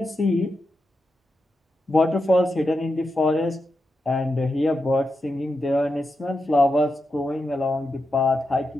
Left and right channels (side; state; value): both; normal; correlation 0.87